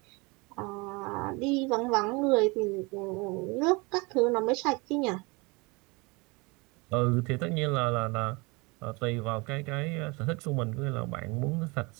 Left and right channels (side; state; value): left; quieter; 26.8 dB